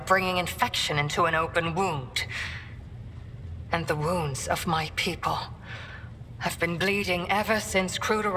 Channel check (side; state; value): both; identical; correlation 1.00